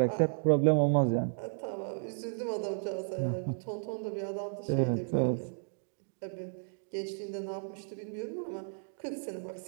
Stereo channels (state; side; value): silent; left; digital silence